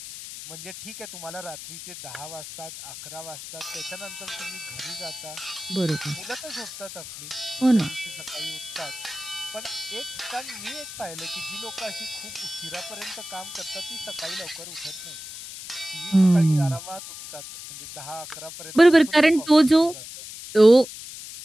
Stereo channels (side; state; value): left; noise; hiss, 11 dB below the sound